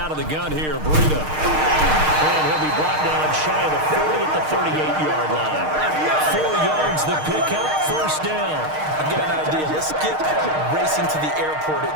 of the gun here, Breida. And he'll be brought down shy of the 40 at the 38-yard line. 4 yards the pickup, 1st down. I've got an idea. Let's skip racing to the airport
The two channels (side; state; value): left; late; 6.5 ms